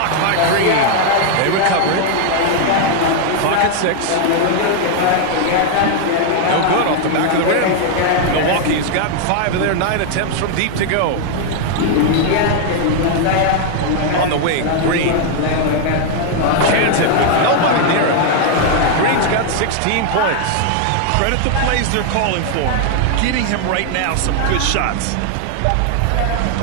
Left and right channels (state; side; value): different; both; correlation 0.00